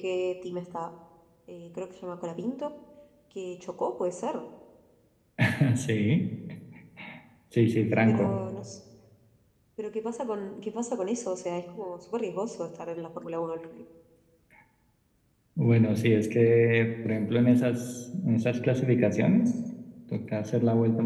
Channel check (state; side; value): identical; both; correlation 1.00